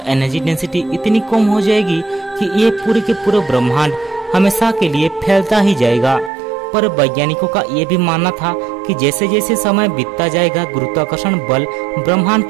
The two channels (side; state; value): left; drops out; at 6.3 s